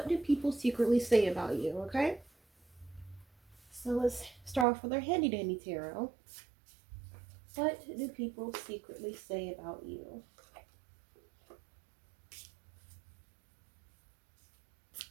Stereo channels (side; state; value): left; drops out; at 4.7 s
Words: do people secretly say about you, okay? So let's start off with our handy dandy tarot. What do people secretly say about you?